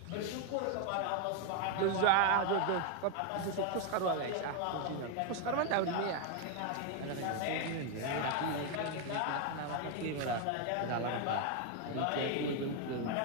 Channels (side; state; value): both; different; correlation 0.01